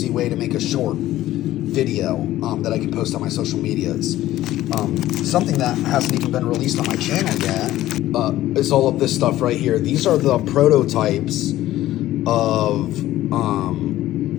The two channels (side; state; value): right; quieter; 14.7 dB